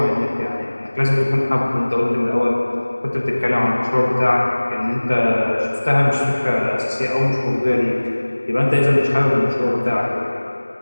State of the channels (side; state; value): both; inverted; correlation -1.00